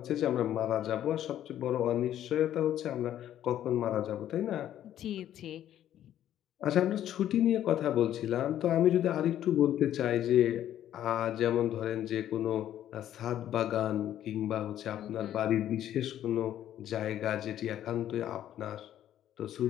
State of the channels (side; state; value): right; quieter; 11.5 dB